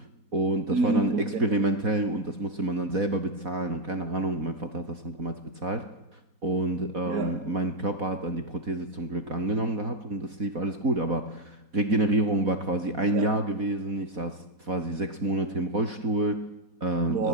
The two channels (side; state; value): left; late; 4.1 ms